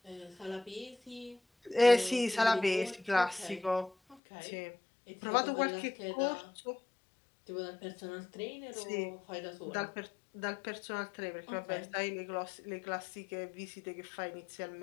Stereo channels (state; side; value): drops out; right; at 4.2 s